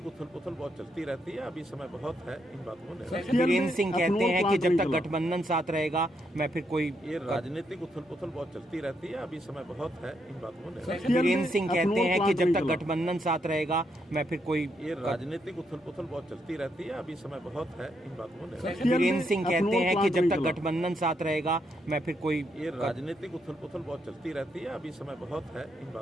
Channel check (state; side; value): normal; both; correlation 0.78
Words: उथल पुथल बहुत चलती रहती है, अभी समय बहुत है इन बातों में। वीरेंद्र सिंह कहते हैं कि जब तक गठबंधन साथ रहेगा मैं फिर कोई ये राजनीतिक उथल पुथल बहुत चलती रहती है, अभी समय बहुत है इन बातों में। वीरेंद्र सिंह कहते हैं कि जब तक गठबंधन साथ रहेगा मैं फिर कोई ये राजनीतिक उथल पुथल बहुत चलती रहती है, अभी समय बहुत है इन बातों में। वीरेंद्र सिंह कहते हैं कि जब तक गठबंधन साथ रहेगा मैं फिर कोई ये राजनीतिक उथल पुथल बहुत चलती रहती है, अभी समय बहुत है इन